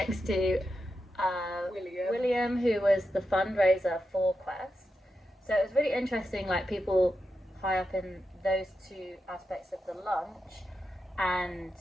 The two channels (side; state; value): both; normal; correlation 0.88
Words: to William, who was the fundraiser for Qest. So it was really interesting, like people high up in those two aspects of the lunch, and